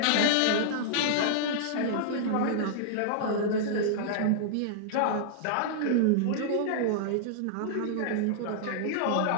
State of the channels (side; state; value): both; different; correlation -0.01